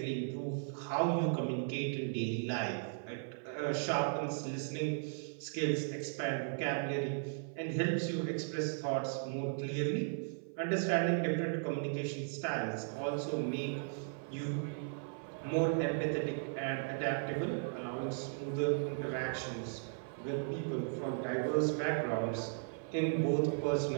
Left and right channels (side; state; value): left; silent; 53 dB below the other